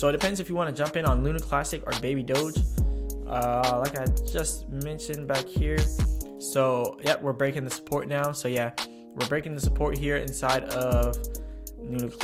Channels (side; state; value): both; identical; correlation 1.00